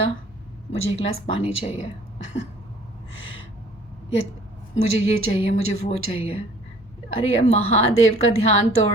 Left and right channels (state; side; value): normal; both; correlation 0.53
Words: मुझे एक गिलास पानी चाहिए या मुझे ये चाहिए, मुझे वो चाहिए। अरे यार महादेव का ध्यान तोड़